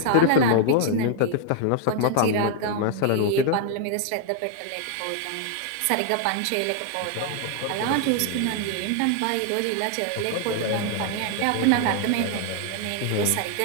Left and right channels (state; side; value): different; both; correlation 0.00